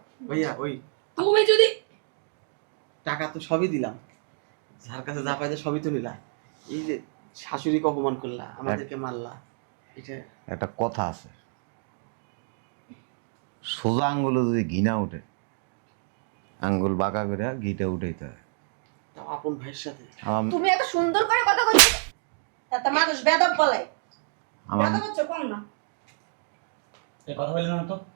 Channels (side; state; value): left; silent; 59 dB below the other